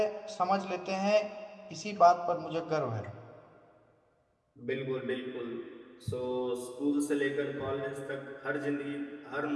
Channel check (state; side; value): identical; both; correlation 1.00